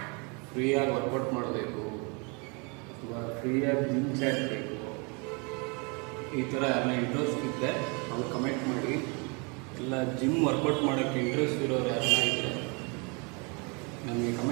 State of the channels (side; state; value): left; quieter; 32.0 dB